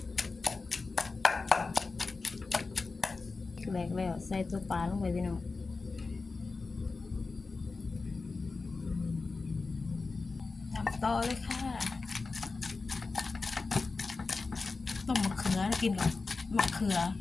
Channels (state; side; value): quieter; right; 4.0 dB